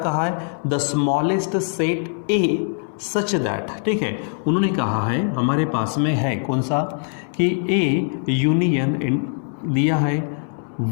है, the smallest set A such that. ठीक है, उन्होंने कहा है हमारे पास में है कौन सा, कि ए यूनियन दिया है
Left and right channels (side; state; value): right; silent; 64 dB below the other